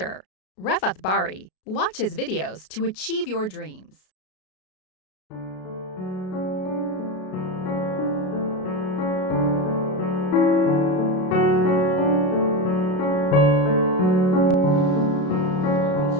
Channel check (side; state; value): right; late; 33 ms